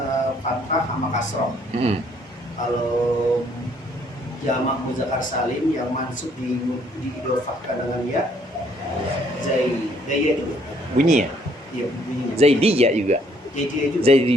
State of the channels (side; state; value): both; normal; correlation 0.65